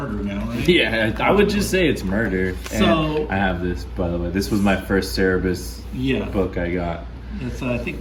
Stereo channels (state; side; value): identical; both; correlation 1.00